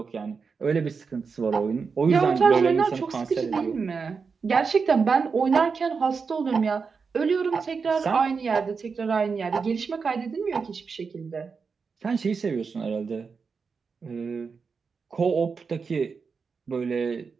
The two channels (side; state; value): left; quieter; 5.3 dB